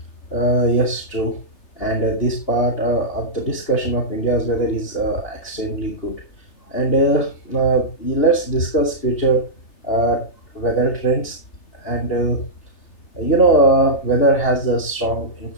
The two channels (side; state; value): right; late; 3.3 ms